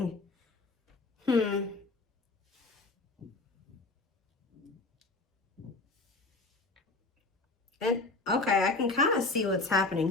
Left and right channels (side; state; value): right; quieter; 3.4 dB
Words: And, okay, I can kind of see what's happening